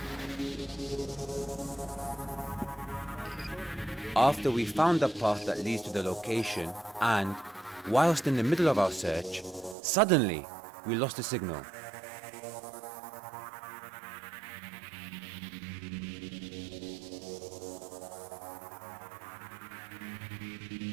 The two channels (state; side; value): drops out; left; at 9.8 s